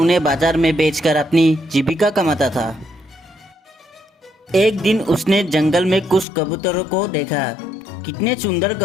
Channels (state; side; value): drops out; right; at 6.2 s